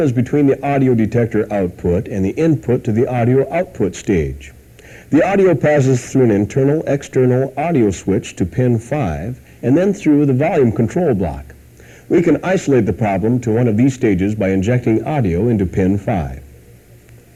is between the audio detector output and the input to the audio output stage. The audio passes through an internal-external audio switch to pin 5 and then through the volume control block. We can isolate the problem to one of these stages by injecting audio into pin 5.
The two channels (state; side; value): identical; both; correlation 1.00